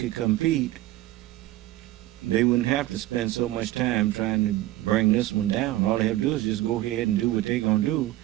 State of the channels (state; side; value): quieter; left; 15.9 dB